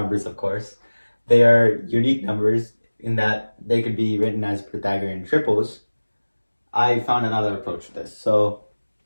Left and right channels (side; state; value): both; inverted; correlation -1.00